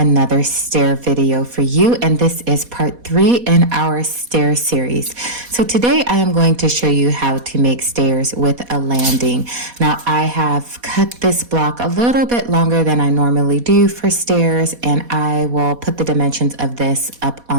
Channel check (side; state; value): left; late; 4.2 ms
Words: stair video for you, and this is part 3 in our stair series. So today I am going to show you how to make stairs with a landing. Now I have cut this block a little bit longer than I normally do for stairs, and I will put the dimensions of this up